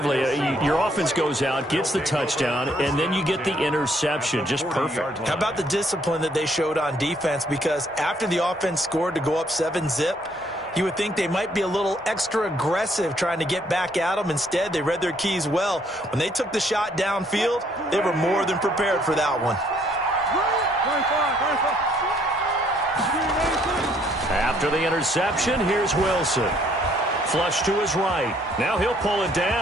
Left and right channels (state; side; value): normal; both; correlation 0.66